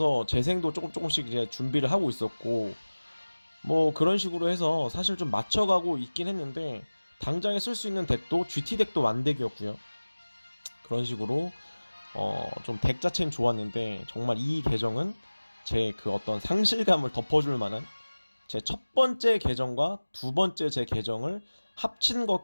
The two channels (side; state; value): both; inverted; correlation -1.00